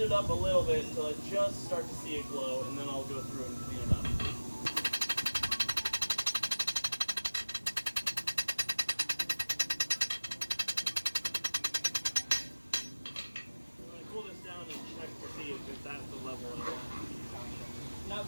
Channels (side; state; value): both; inverted; correlation -1.00